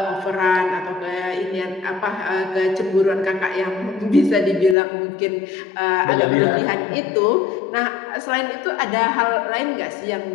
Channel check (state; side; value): drops out; right; at 4.8 s